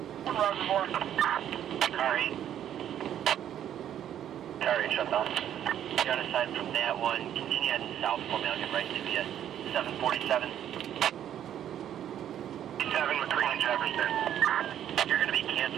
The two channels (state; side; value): quieter; left; 10.4 dB